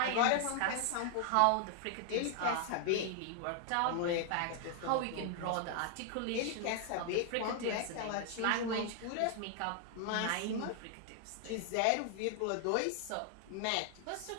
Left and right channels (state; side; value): different; both; correlation 0.00